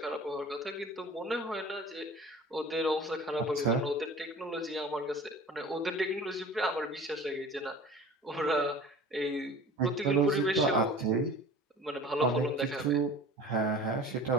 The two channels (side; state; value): both; normal; correlation 0.41